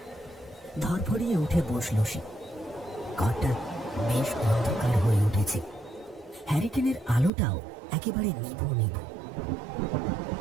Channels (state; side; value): drops out; left; at 7.3 s